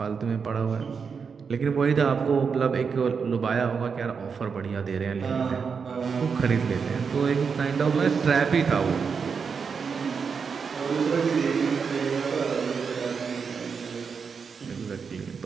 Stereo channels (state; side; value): quieter; left; 5.8 dB